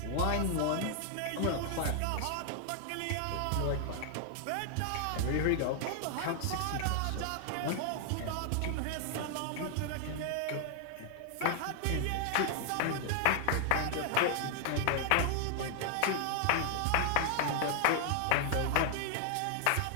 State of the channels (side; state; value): both; different; correlation 0.00